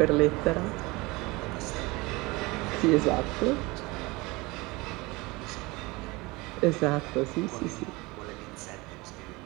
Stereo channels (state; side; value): quieter; left; 23.4 dB